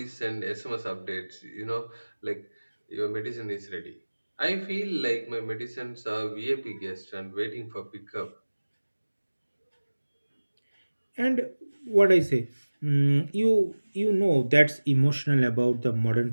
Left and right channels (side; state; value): both; inverted; correlation -1.00